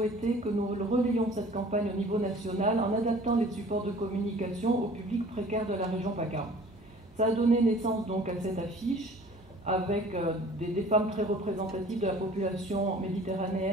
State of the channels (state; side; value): normal; both; correlation 0.48